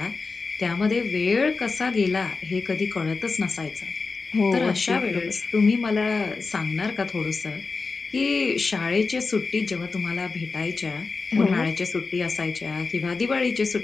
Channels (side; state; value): right; quieter; 4.2 dB